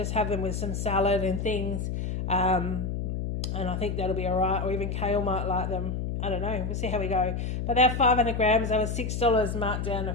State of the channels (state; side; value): noise; left; hum, 3 dB below the sound